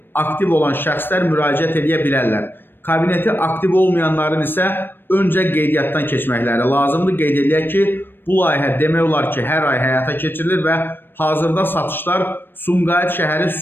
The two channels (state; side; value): late; right; 0.097 ms